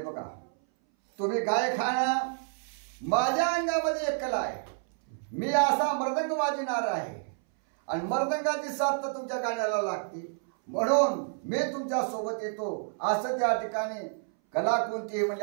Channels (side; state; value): left; silent; 58 dB below the other